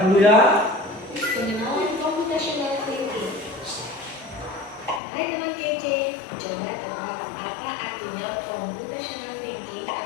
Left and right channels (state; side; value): drops out; right; at 5.0 s